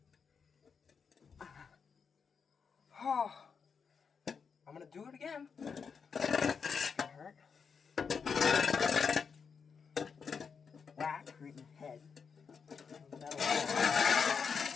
Oh, I'm gonna do it again. It's gonna hurt. Whack right in the head.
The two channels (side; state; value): right; quieter; 6.0 dB